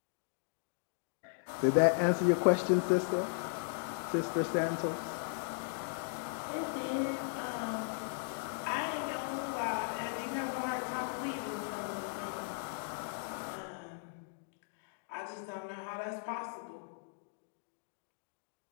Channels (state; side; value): silent; right; digital silence